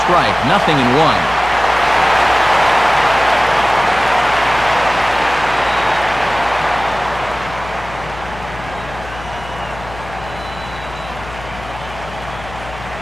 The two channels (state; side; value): noise; left; hum, 15 dB below the sound